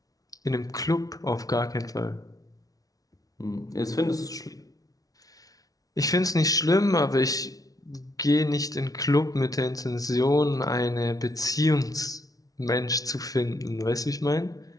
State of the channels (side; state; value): right; late; 0.18 ms